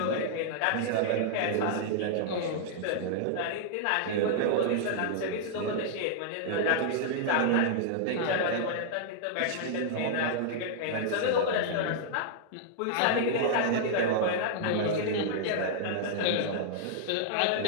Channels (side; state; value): both; different; correlation -0.01